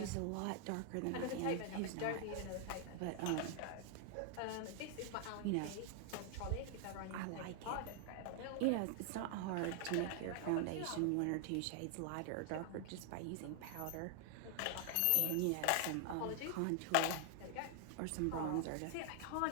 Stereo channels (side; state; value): both; different; correlation 0.00